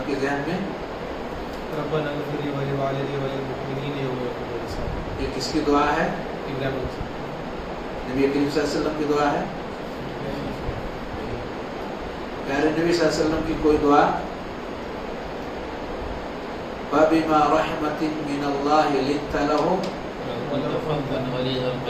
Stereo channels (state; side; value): identical; both; correlation 1.00